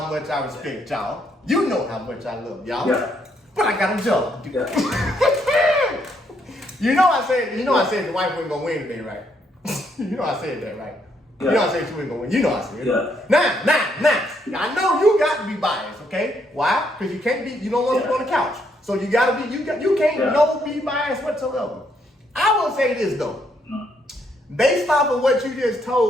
much I respect y'all. You know how much I love y'all. Yeah. But I got a job to do. Yeah. You know I said the wife wasn't gonna win today, right? You know I said that, right? Yeah. You know I said she wasn't gonna win. You know I said it. Yeah. Now. I know you got to be biased, okay? Why? Because you can't be. You don't want to be on the couch, so you gotta be. You can't be biased whatsoever. I will say this though, based off of what you just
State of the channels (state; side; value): normal; both; correlation 0.73